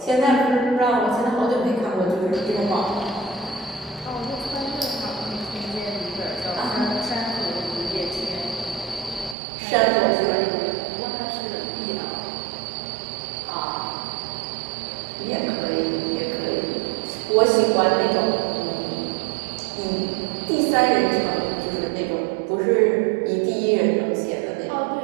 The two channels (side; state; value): left; drops out; at 9.3 s